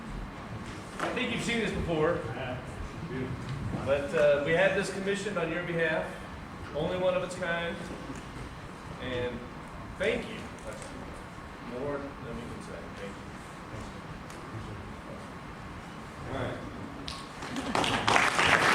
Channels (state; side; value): identical; both; correlation 1.00